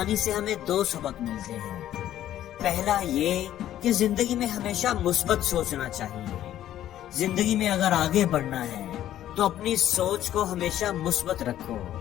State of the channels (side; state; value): right; quieter; 12.2 dB